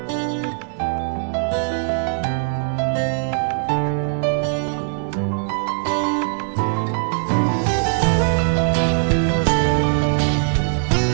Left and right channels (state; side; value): silent; left; 65 dB below the other